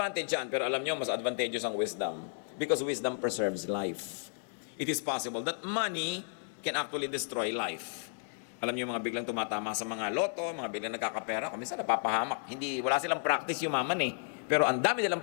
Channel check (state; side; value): silent; right; digital silence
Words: yan, pero alam niyo, mas advantageous ang wisdom. Because wisdom preserves life. It is possible that money can actually destroy life. Alam niyo, mga biglang tumatama sa mga loto, mga biglang nagkakapera, kung minsan napapahamak. Wala silang practice yumaman eh. Pero ang dami nilang